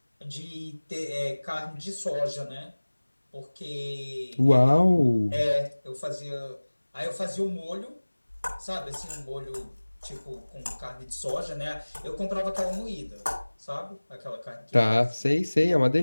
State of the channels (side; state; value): both; inverted; correlation -1.00